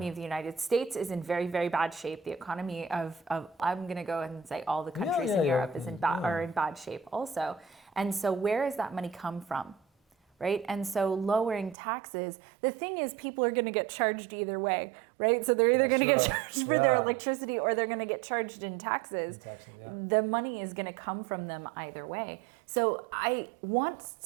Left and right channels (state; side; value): drops out; left; at 11.8 s